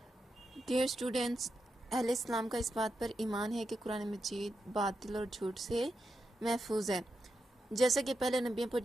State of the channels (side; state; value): both; normal; correlation 0.86